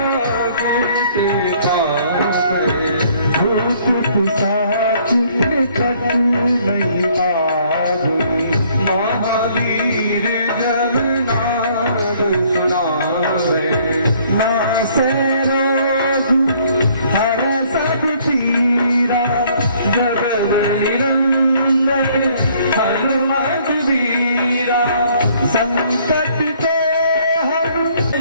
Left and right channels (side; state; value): both; inverted; correlation -0.62